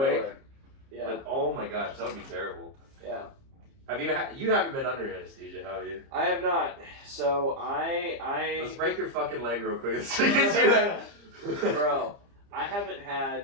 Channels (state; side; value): late; left; 30 ms